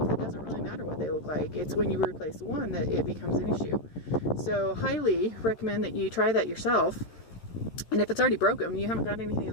it doesn't really matter what they look like. It's when you replace one that it becomes an issue. So highly recommend that you try that yourself. And if it's already broken, you haven't got anything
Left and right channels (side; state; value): right; late; 13 ms